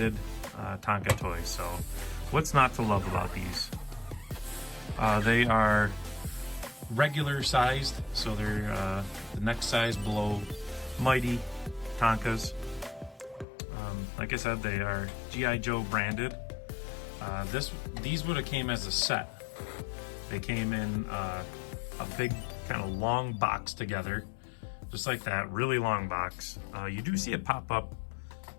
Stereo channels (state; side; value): drops out; right; at 13.5 s